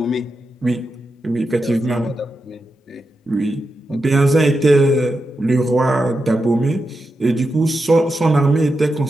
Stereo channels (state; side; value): normal; both; correlation 0.88